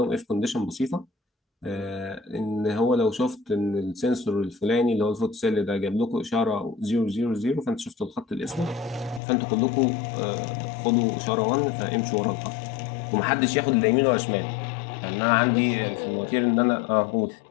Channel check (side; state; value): right; drops out; at 9.2 s